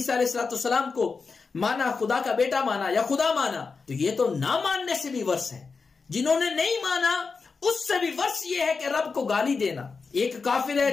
علیہ السلام کو مانا, خدا کا بیٹا مانا یا خدا مانا, تو یہ تو نہ ماننے سے بھی ورس ہے. جنہوں نے نہیں مانا اس سے بھی ورس یہ ہے کہ رب کو گالی دینا. ایک کافر ہے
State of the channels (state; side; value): quieter; right; 4.7 dB